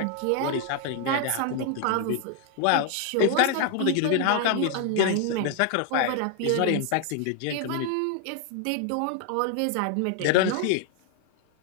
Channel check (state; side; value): different; both; correlation 0.01